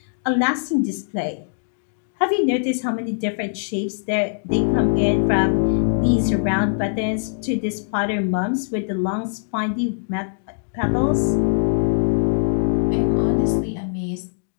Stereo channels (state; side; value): silent; right; digital silence